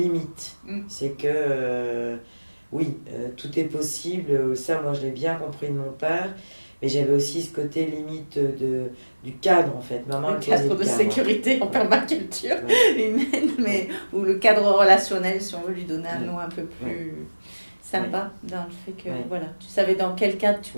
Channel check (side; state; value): both; inverted; correlation -1.00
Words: C'est que, oui, tout est possible. Ça, moi, je l'ai bien compris de mon père. Mais j'avais aussi ce côté limite du cadre, en fait. Maman, le cadre de sécurité en permaculture humaine, mais ou le cadre relationnel, si on veut lui donner un nom un peu plus sympa, dans le fait que voilà, tu savais dans quel cadre tu